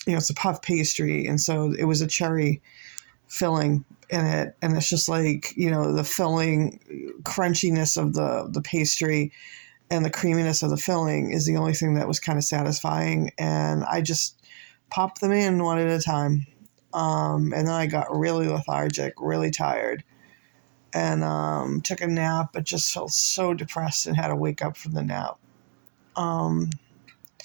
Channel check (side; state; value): left; silent; digital silence